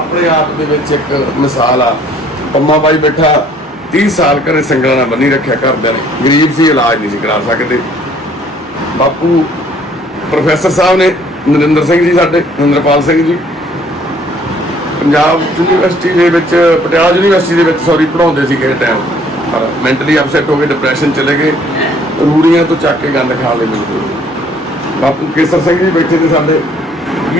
ਆਪ ਦੇ ਵਿੱਚ ਇੱਕ ਮਿਸਾਲ ਆ। ਪੰਮਾ ਬਾਈ ਬੈਠਾ 30 ਸਾਲ ਘਰੇ ਸੰਗਲਾਂ ਨਾਲ ਬੰਨੀ ਰੱਖਿਆ, ਘਰਦਿਆਂ ਨੇ, ਗਰੀਬ ਸੀ, ਇਲਾਜ ਨਹੀਂ ਸੀ ਕਰਾ ਸਕਦੇ। ਬਾਪੂ ਪ੍ਰੋਫੈਸਰ ਸਾਹਿਬ ਨੇ, ਨਰਿੰਦਰ ਸਿੰਘ ਜੀ ਸਾਡੇ, ਨਰਿੰਦਰਪਾਲ ਸਿੰਘ ਜੀ, ਪੰਜਾਬ ਯੂਨੀਵਰਸਿਟੀ ਦੇ ਵਿੱਚ, ਪਟਿਆਲਾ ਯੂਨੀਵਰਸਿਟੀ ਦੇ ਵਿੱਚ ਸੌਰੀ ਪੜ੍ਹਾਉਂਦੇ ਸੀ ਕਿਸੇ ਟਾਈਮ, ਪਰ ਮੈਂਟਲੀ ਅਪਸੈਟ ਹੋ ਕੇ ਡਿਪਰੈਸ਼ਨ ਚਲੇ ਗਏ, ਰੂੜੀਆਂ ਤੋਂ ਚੱਕ ਕੇ ਗੰਦ ਖਾ ਲਏ ਬਿਲਕੁਲ। ਬਾਪੂ ਕੇਸਰ ਸਿੰਘ ਜੀ ਬੈਠੇ ਨੇ ਸਾਡੇ,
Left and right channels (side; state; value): both; normal; correlation 0.60